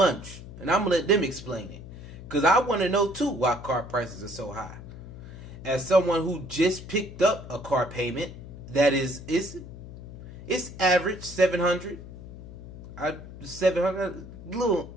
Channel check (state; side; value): noise; left; hum, 14 dB below the sound